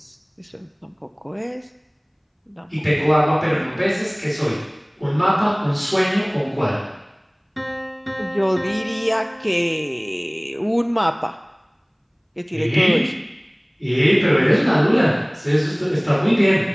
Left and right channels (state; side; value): identical; both; correlation 1.00